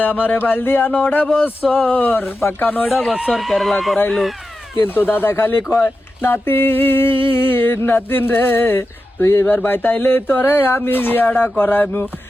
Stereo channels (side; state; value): both; normal; correlation 0.91